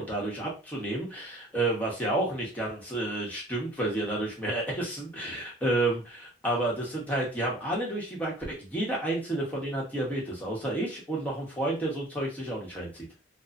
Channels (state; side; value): normal; both; correlation 0.49